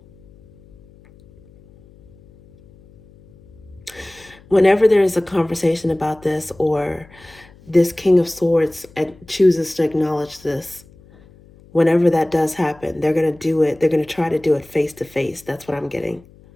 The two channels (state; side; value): noise; left; hum, 26 dB below the sound